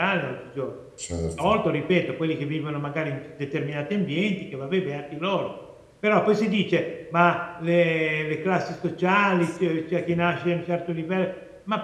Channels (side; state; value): both; identical; correlation 1.00